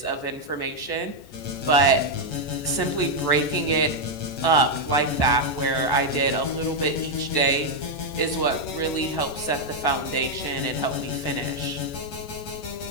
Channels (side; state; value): right; late; 14 ms